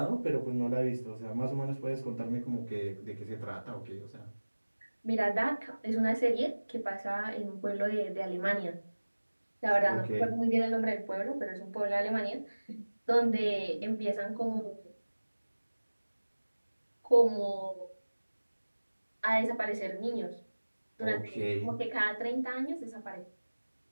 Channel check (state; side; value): inverted; both; correlation -1.00